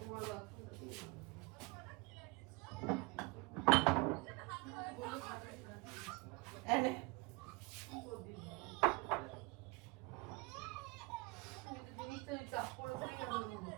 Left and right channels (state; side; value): quieter; left; 25.5 dB